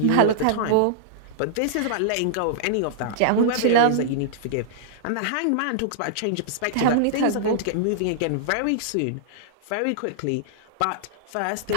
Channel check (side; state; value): both; different; correlation -0.02